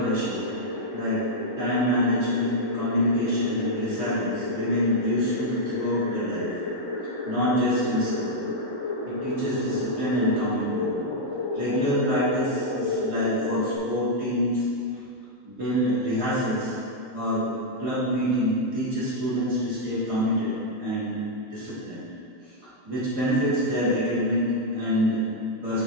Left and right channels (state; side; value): normal; both; correlation -0.04